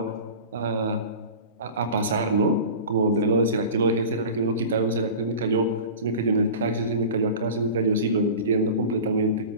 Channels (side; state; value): both; inverted; correlation -0.35